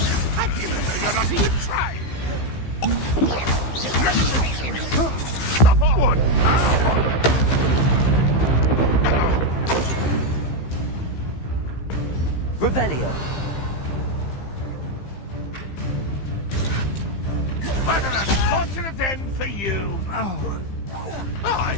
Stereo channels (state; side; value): late; right; 15 ms